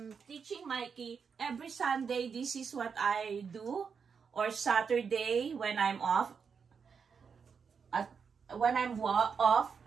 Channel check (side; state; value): left; quieter; 6.1 dB